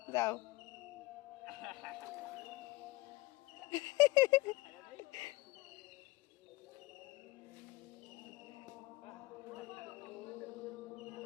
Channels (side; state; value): right; quieter; 21.1 dB